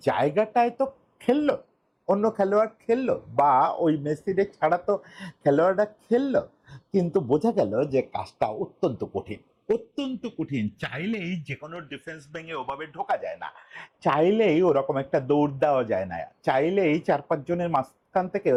জায়গাটায় তো খেললো, অন্য খেলোয়াড় খেললো বা ওই মেসিরে ছাড়া তো খেলোয়াড়রা খেললো, কিন্তু বোঝা গেল যে কাজটা অত্যন্ত কঠিন, অত্যন্ত কঠিন। চাইলেই যে কোনো ডিফেন্স ভেঙে ওভাবে ঢোকা যায় না, চাইলেই ওরকম একটা দৌড় দেওয়া যায় না, চাইলেই 4-5 জনের মাঝখান থেকে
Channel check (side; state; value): both; identical; correlation 1.00